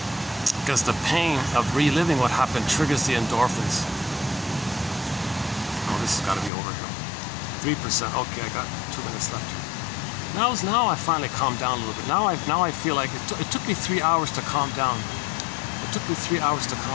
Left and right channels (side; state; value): right; drops out; at 6.5 s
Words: Because the pain of reliving what happened triggers the endorphins. Oh, this has got to be over here. 3%. Okay, I got 2 minutes left here. Now I finally calmed down a little bit. Now I feel like it took me 3 hours to calm down. It took me 3 hours to